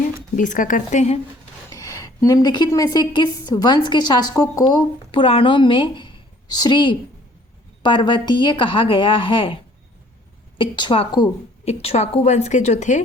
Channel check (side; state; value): both; normal; correlation 0.57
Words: 20 का करते हैं। निम्नलिखित में से किस वंश के शासकों को पुराणों में श्री पर्वतीय कहा गया है? इक्ष्वाकु वंश के जो